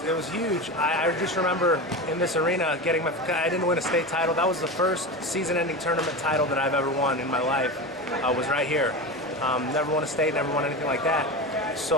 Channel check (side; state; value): both; normal; correlation 0.24